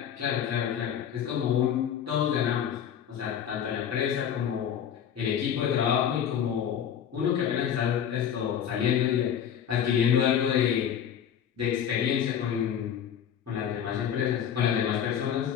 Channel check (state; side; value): quieter; right; 9.0 dB